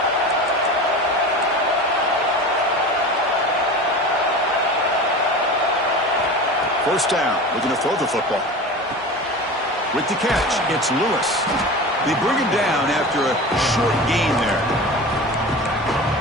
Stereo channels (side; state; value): both; normal; correlation 0.32